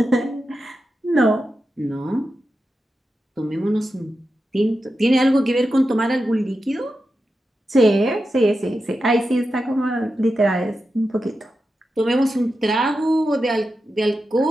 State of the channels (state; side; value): normal; both; correlation 0.90